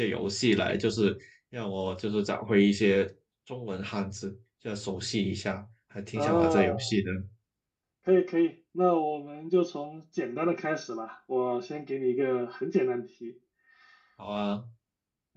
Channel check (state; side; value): identical; both; correlation 1.00